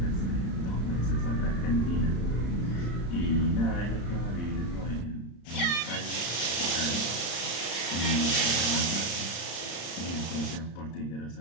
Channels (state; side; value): late; right; 35 ms